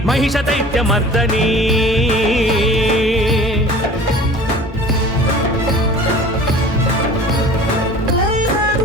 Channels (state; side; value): normal; both; correlation 0.43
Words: మహిష దైత్య మర్దని